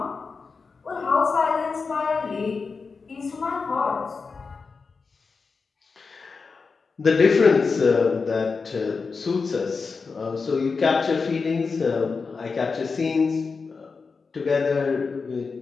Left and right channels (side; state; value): right; quieter; 4.8 dB